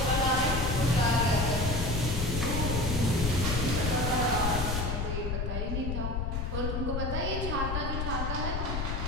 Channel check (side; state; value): left; noise; rumble, 1 dB below the sound